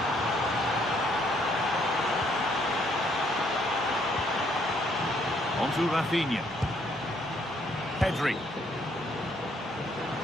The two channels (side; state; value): both; normal; correlation 0.68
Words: On to Rafinha. Pedri.